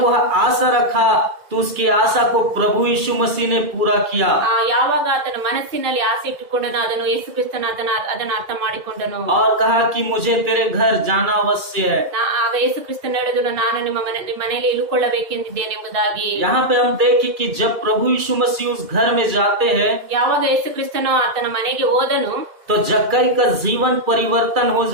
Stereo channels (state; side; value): late; left; 2.3 ms